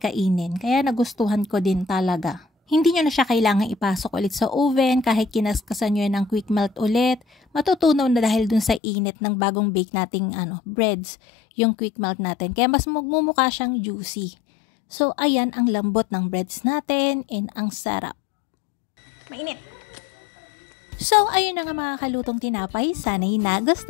Kaya nagustuhan ko din talaga. Hindi nyo na siya kailangan ipasok ulit sa oven kahit kinaskasan nyo yan ng quick melt ulit. Matutunaw na dahil dun sa init ng bagong bake nating breads, yung quick melt natin. Kaya mas magmumukha siyang juicy. So ayan ang lambot ng breads natin and ang sarap. Mainit. So, ayun na nga mga kalutong tinapay. Sana'y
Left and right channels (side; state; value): right; drops out; at 8.8 s